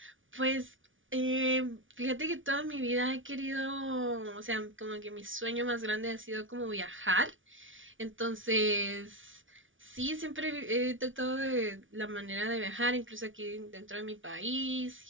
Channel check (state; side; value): late; left; 0.57 ms